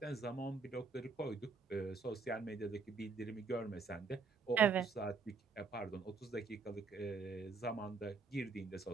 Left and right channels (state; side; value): quieter; left; 4.7 dB